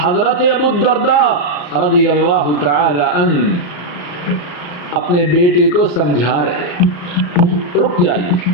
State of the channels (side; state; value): right; late; 34 ms